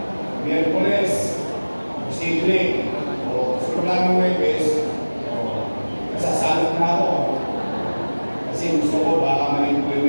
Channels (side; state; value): both; inverted; correlation -1.00